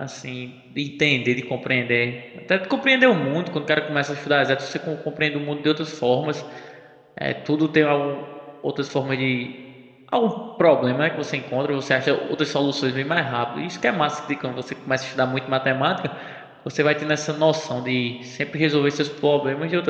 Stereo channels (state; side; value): identical; both; correlation 1.00